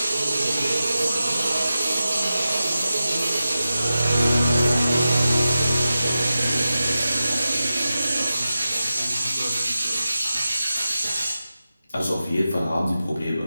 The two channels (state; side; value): inverted; both; correlation -0.92